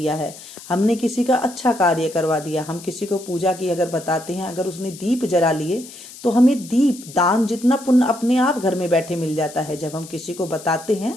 है, हमने किसी का अच्छा कार्य करवा दिया। हम किसी को पूजा की अगर बताते हैं, अगर उसने दीप जला लिए तो हमें दीप दान जितना पुण्य अपने आप घर में बैठे मिल जाता है। जब हम किसी को बताते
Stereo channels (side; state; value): left; noise; hiss, 17 dB below the sound